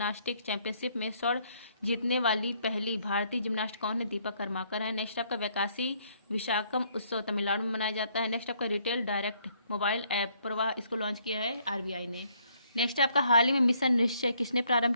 चैंपियनशिप में स्वर्ण जीतने वाली पहली भारतीय जिम्नास्ट कौन है? दीपा कर्माकर है। नेक्स्ट आपका वैकासी विशाखम उत्सव तमिलनाडु में मनाया जाता है। नेक्स्ट आपका रिटेल डायरेक्ट मोबाइल ऐप प्रवाह, इसको लॉन्च किया है RBI ने। नेक्स्ट आपका हाल ही में मिशन निश्चय किसने प्रारंभ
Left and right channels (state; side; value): inverted; both; correlation -0.68